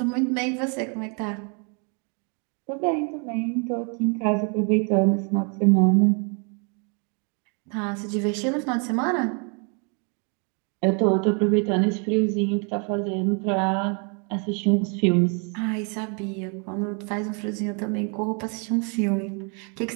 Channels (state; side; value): quieter; left; 37.3 dB